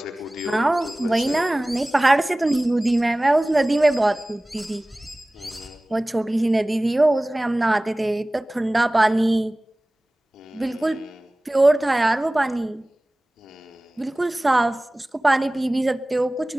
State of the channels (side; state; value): both; normal; correlation 0.98